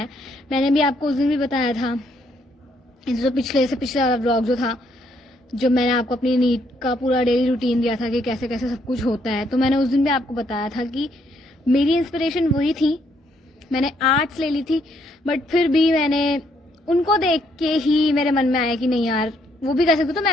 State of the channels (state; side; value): normal; both; correlation 0.71